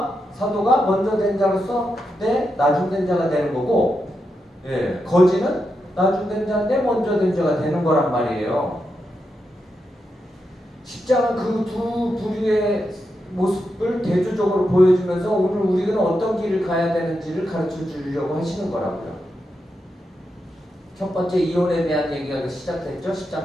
먼저 된 자로서 나중 된 자가 되는 거고 거지는 나중 된 자인데 먼저 된 자가 되는 거란 말이에요. 십자가 그 두 부류의 모습을 대조적으로 보여주면서 오늘 우리는 어떤 길을 가야 되는지를 가르쳐 주려고 하시는 거라고요. 첫 번째 이혼에 대한 얘기가 시작됐죠.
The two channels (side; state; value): both; normal; correlation 0.86